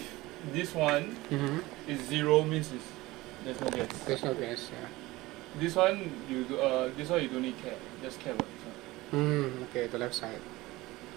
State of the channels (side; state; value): left; quieter; 19.6 dB